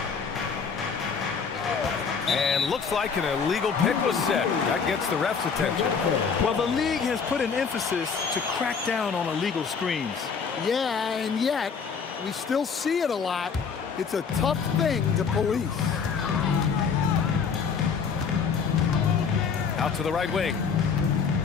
And looks like an illegal pick was set. That gets the ref's attention. Well, the league has put an emphasis to crack down on illegal screens. Yeah, and yet, we still see it a lot. It's a tough thing to police. Out to the right wing.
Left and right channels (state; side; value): quieter; right; 6.0 dB